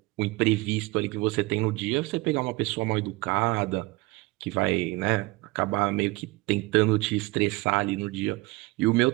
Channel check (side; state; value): left; quieter; 22.2 dB